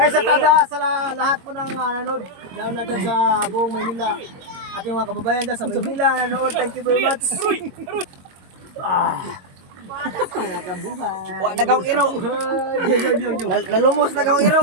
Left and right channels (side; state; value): left; late; 22 ms